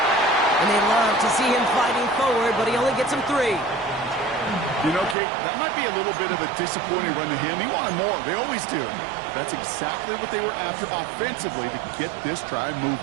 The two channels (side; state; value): left; drops out; at 5.2 s